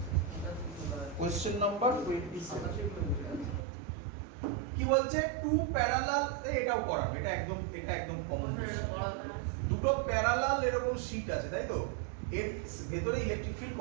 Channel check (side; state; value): left; drops out; at 3.7 s